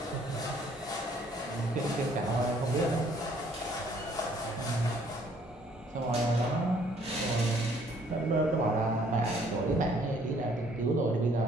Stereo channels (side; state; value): both; normal; correlation 0.62